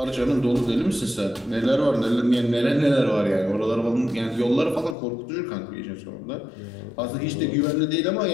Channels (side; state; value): right; drops out; at 5.0 s